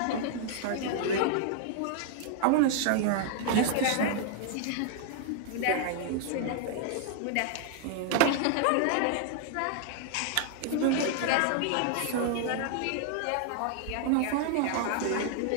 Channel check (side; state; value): both; different; correlation 0.00